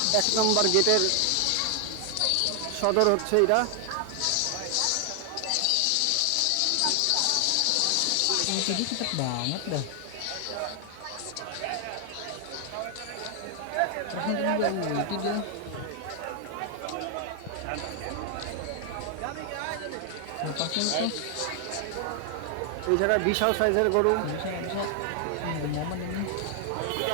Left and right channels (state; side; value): different; both; correlation 0.00